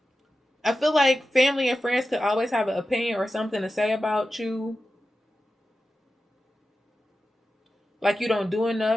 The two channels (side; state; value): both; normal; correlation 0.92